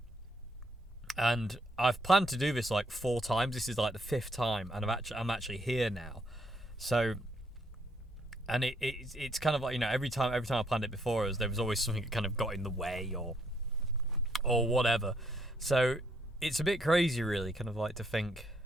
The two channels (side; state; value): both; normal; correlation 0.71